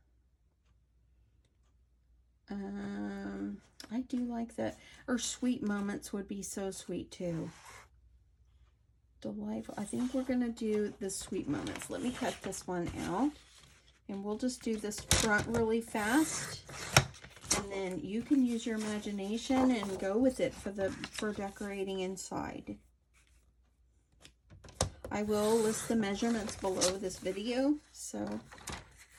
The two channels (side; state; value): both; identical; correlation 1.00